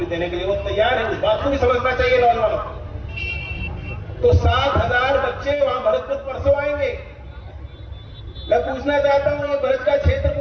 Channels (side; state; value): both; identical; correlation 1.00